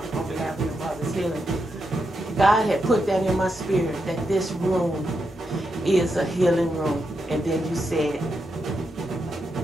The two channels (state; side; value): normal; both; correlation 0.84